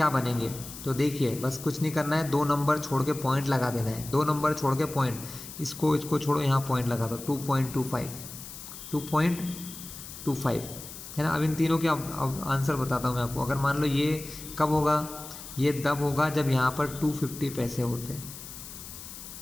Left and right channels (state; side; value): noise; left; hiss, 13 dB below the sound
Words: बनेंगे। तो देखिए बस कुछ नहीं करना है, 2 नंबर छोड़ के पॉइंट लगा देना है। 2 नंबर छोड़ के पॉइंट, इसको छोड़ो, यहाँ पॉइंट लगा दो। 2.25, 2.25, है ना। अब इन तीनों के अब आंसर बताता हूँ मैं आपको। अगर मान लो ये कब होगा, ये तब होगा जब यहाँ पर 250 पैसे होते हैं,